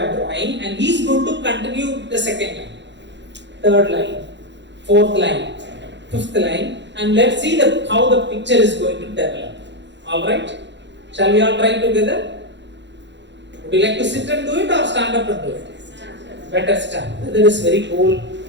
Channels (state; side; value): late; left; 0.52 ms